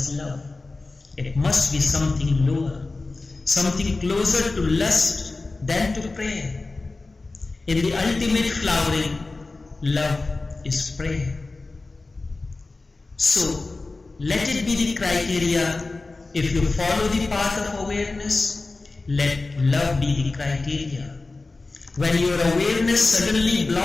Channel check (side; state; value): right; quieter; 3.5 dB